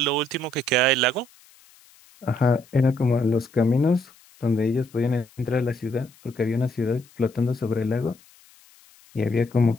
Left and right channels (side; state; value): left; noise; hiss, 28 dB below the sound